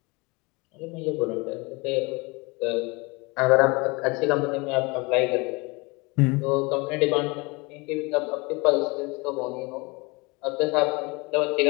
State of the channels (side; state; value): right; quieter; 26.6 dB